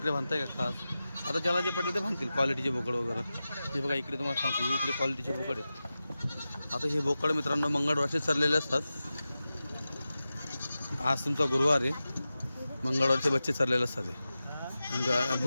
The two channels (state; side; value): inverted; both; correlation -0.94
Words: बांधताय का खास. आता ज्याला जे पटेल ते बांधतील क्वालिटीचे बोकड वगैरे. हे बघा इकडे तुम्हाला सांगतो हे इकडे क्वालिटीचे बोकड आहेत. आता हे बोकड मित्रांनो मंगळवारचे चाललेले असतात. आज तुमचा गुरुवार आहे. मंगळवारचे बच्चे चाललेले असतात. हे